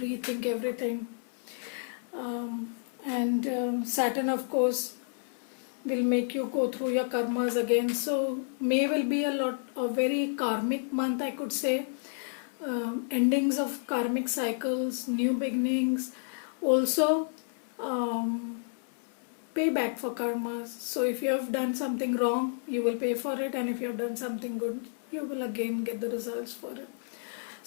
everything. And Saturn, of course, will make you go through your karmas again. So May will be a very karmic month, I could say. Endings of karmic cycles, new beginnings. Also, payback for karmas. So if you have done something wrong, you will pay for it, and if you have done something good, you will again get the results for it.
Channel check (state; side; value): silent; right; 57 dB below the other